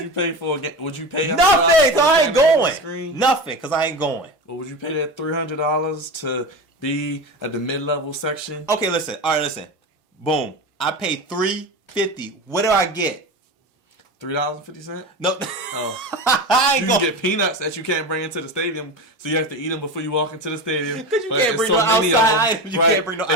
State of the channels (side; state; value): both; normal; correlation 0.25